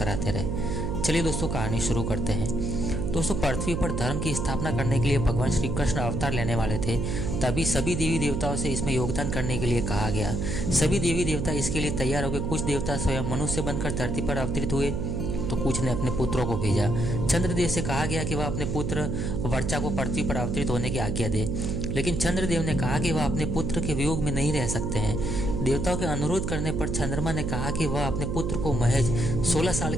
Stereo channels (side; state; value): right; noise; hum, 1 dB below the sound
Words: रहें। चलिए दोस्तों, कहानी शुरू करते हैं। दोस्तों, पृथ्वी पर धर्म की स्थापना करने के लिए भगवान श्री कृष्ण अवतार लेने वाले थे। तभी सभी देवी देवताओं से इसमें योगदान करने के लिए कहा गया। सभी देवी देवता इसके लिए तैयार हो गए। कुछ देवता स्वयं मनुष्य बनकर धरती पर अवतरित हुए तो कुछ ने अपने पुत्रों को भेजा। चंद्रदेव से कहा गया कि वह अपने पुत्र वर्चा को पृथ्वी पर अवतरित होने की आज्ञा दे, लेकिन चंद्रदेव ने कहा कि वह अपने पुत्र के वियोग में नहीं रह सकते हैं। देवताओं के अनुरोध करने पर चंद्रमा ने कहा कि वह अपने पुत्र को महज 16 साल